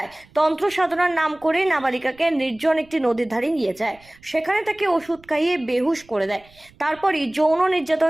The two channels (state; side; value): noise; right; rumble, 28 dB below the sound